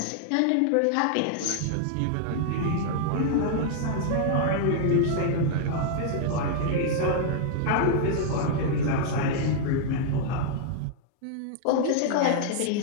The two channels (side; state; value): both; different; correlation -0.01